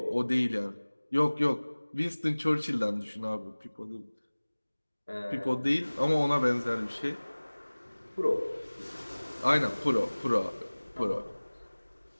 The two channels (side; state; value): both; inverted; correlation -1.00